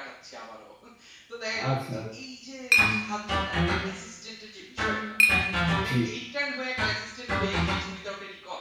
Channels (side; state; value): both; identical; correlation 1.00